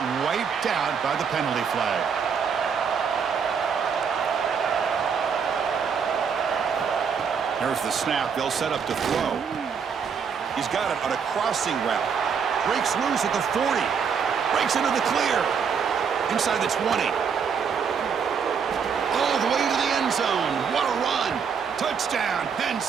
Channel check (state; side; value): quieter; left; 6.5 dB